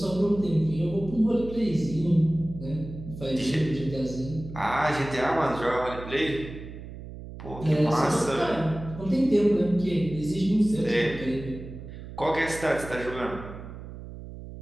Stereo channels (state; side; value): noise; right; hum, 12 dB below the sound